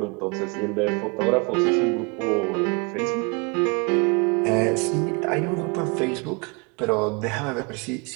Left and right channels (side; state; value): left; quieter; 31.2 dB